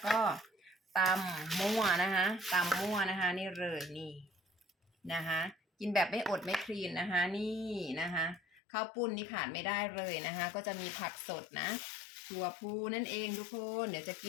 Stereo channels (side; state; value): right; drops out; at 8.6 s